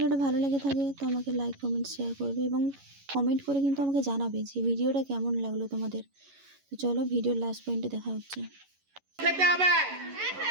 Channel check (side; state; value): left; late; 11 ms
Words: ভালো লেগে থাকে তো আমাকে লাইক কমেন্ট শেয়ার করবে এবং কমেন্ট করে কিন্তু আমাকে জানাবে যে ভিডিওটা কেমন লাগলো তোমাদের। তো চলো ভিডিওর লাস্ট পয়েন্টে দেখা হচ্ছে।